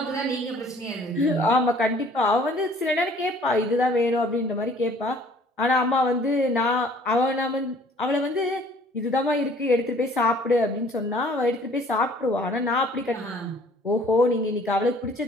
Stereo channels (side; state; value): both; normal; correlation 0.55